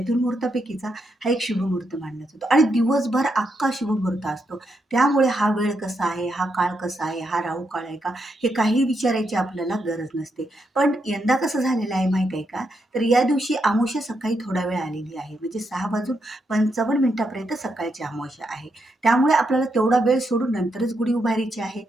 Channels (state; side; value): normal; both; correlation 0.81